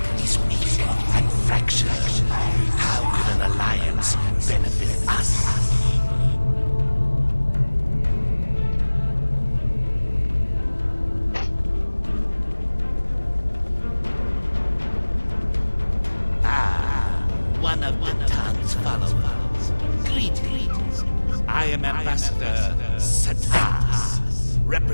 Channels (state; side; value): inverted; both; correlation -1.00